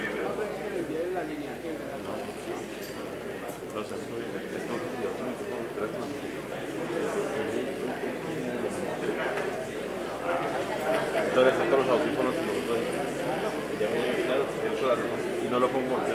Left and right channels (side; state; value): both; identical; correlation 1.00